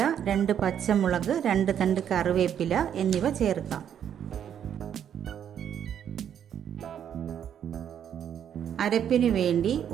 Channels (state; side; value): quieter; left; 9.2 dB